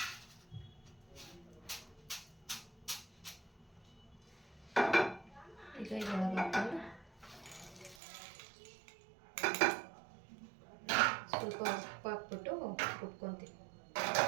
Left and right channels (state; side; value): drops out; left; at 8.0 s